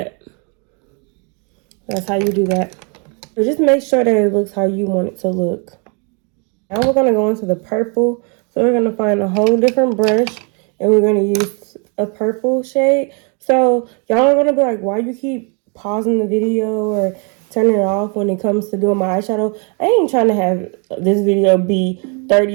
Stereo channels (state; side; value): quieter; left; 36.1 dB